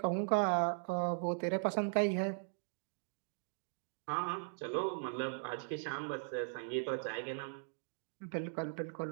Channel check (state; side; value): silent; left; digital silence